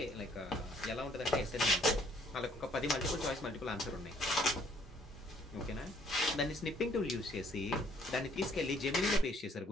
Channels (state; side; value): normal; both; correlation 0.63